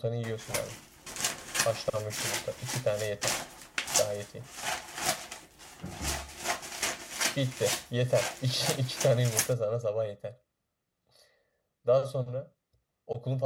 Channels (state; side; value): identical; both; correlation 1.00